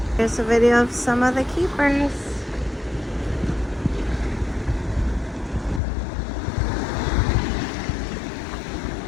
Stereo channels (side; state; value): right; drops out; at 5.8 s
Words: Here's a video of some of the keepers.